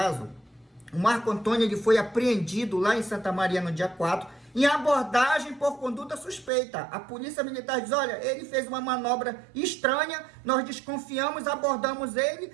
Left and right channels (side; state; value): left; drops out; at 6.5 s